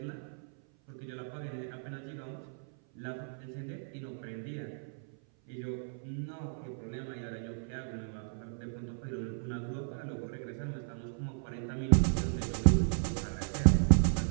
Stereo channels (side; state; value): left; silent; 55 dB below the other